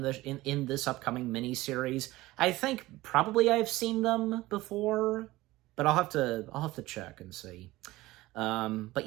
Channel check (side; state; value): left; quieter; 18.4 dB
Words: this upcoming miniseries, I think probably I've seen them before, but I'll have to check and see. But